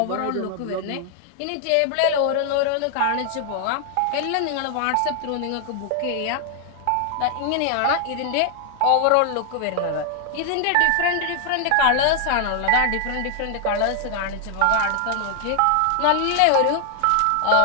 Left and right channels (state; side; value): different; both; correlation 0.00